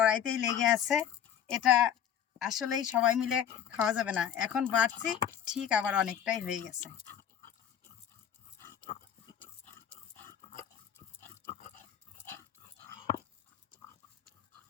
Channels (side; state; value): right; quieter; 9.3 dB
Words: লেগে আছে, এটা আসলেই সবাই মিলে খাওয়া যাবে না। এখন বাড়ছি, ঠিক আবার অনেকটাই হয়ে গেছে।